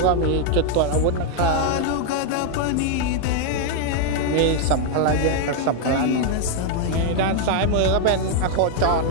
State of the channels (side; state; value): both; different; correlation 0.00